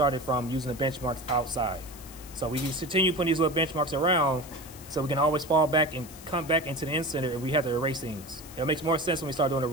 from using the benchmarks outside. So we just continue putting these little benchmarks around so we can always fall back and come back into the in-center if we have to erase things. It makes more sense when we start doing the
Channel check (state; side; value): noise; left; hiss, 17 dB below the sound